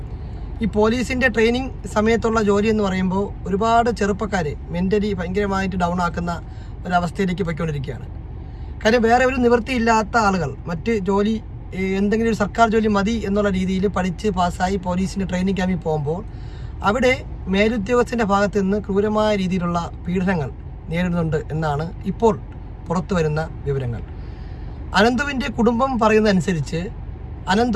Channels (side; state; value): both; identical; correlation 1.00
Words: ഈ പോലീസിൻ്റെ ട്രെയിനിങ് സമയത്തുള്ള ജോലി എന്ന് പറയുമ്പോൾ ഒരുപാട് ചെറുപ്പക്കാർ മെൻ്റലി ഭയങ്കരമായിട്ട് ഡൗൺ ആക്കുന്ന ഒരവസ്ഥയിലേക്ക് പോയിക്കൊണ്ടിരിക്കുകയാണ്. കാര്യം വേറെ ഒരു നിവൃത്തിയില്ലാത്ത ആളുകൾ മറ്റ് ജോലി എന്തെങ്കിലും ഒരു സർക്കാർ ജോലി മതി എന്നുള്ള രീതിയിൽ പഠിച്ച് പാസ്സായി പോലീസിൻ്റെ ട്രെയിനിങ് ക്യാമ്പിൽ പോകുമ്പോൾ അവിടെ മേലുദ്യോഗസ്ഥൻ്റെ ഭാഗത്ത് നിന്ന് ക്രൂരമായ രീതിയിലുള്ള പീഡനങ്ങൾ നേരിടുന്നുണ്ട് എന്നാണ് ഇപ്പോൾ പുറത്തു വരുന്ന വിവരങ്ങൾ. അനന്തുവിൻ്റെ കുടുംബം പറയുന്നതനുസരിച്ച്